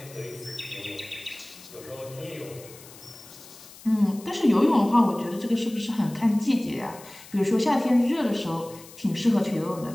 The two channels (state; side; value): noise; left; hiss, 19 dB below the sound